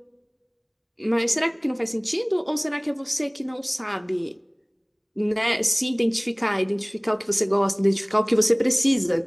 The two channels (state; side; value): identical; both; correlation 1.00